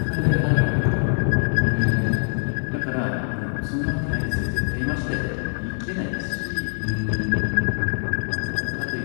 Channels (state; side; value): silent; right; digital silence